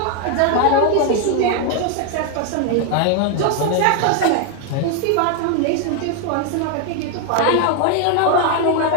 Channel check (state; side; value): different; both; correlation 0.01